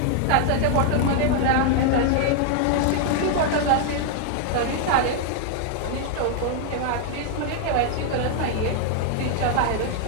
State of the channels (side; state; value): both; different; correlation 0.00